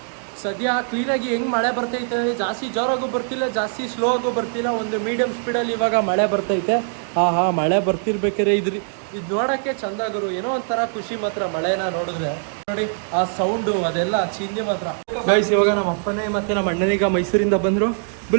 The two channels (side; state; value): left; silent; digital silence